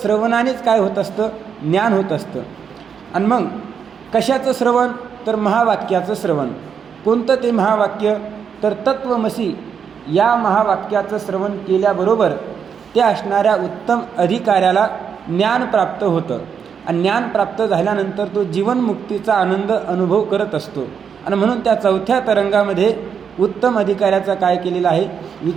काय होत असतं, ज्ञान होत असतं. आणि मग कशाचं श्रवण तर महावाक्याचं श्रवण. कोणतं ते महावाक्य तर तत्वमसी या महावाक्याचं श्रवण केल्याबरोबर त्या असणाऱ्या उत्तम अधिकाऱ्याला ज्ञान प्राप्त होतं. आणि ज्ञान प्राप्त झाल्यानंतर तो जीवनमुक्तीचा आनंद अनुभव करत असतो. आणि म्हणून त्या 4थ्या तरंगामध्ये उत्तम अधिकाऱ्याचा काय केलेला आहे,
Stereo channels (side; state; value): left; quieter; 7.1 dB